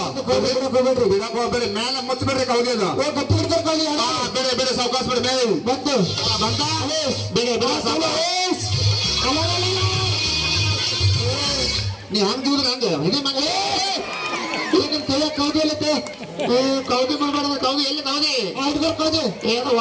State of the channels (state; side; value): identical; both; correlation 1.00